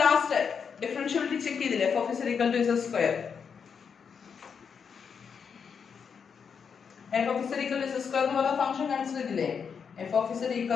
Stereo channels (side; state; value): right; quieter; 6.5 dB